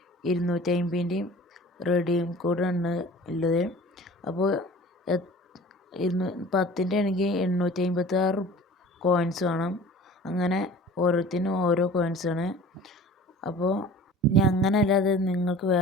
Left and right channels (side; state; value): both; normal; correlation 0.43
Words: 250ൻ്റെയും റെഡീം കോഡാണ് ഉള്ളത്. അപ്പോൾ 10ൻ്റെ ആണെങ്കിൽ 856 കോയിൻസ് വേണം. അങ്ങനെ ഓരോരുത്തരും ഓരോ കോയിൻസാണ്. അപ്പോൾ ഇനി അങ്ങനെ അല്ലാതെ നിങ്ങൾക്ക്